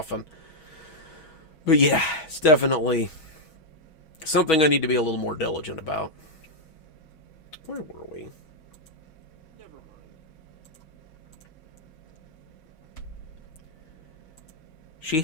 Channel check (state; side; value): late; right; 6.2 ms